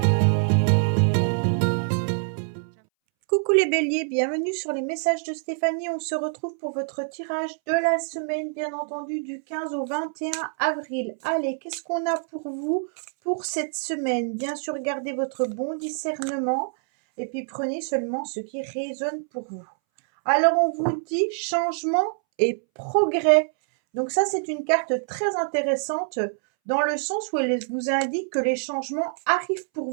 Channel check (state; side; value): silent; left; 62 dB below the other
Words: Coucou les béliers, bienvenue sur les messages de Stéphanie. On se retrouve pour votre tirage de la semaine, bien entendu, du 15 au 21 avril. Allez, qu'est-ce qu'on a pour vous pour cette semaine? Bien sûr, gardez votre bon discernement et puis prenez seulement ce qui résonne pour vous. Alors, on vous dit changement et progrès. Donc ça, c'est une carte très intéressante dans le sens où elle vous indique que les changements arrivent pour